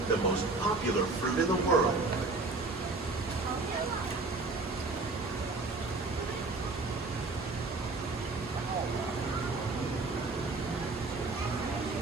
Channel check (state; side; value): quieter; left; 3.5 dB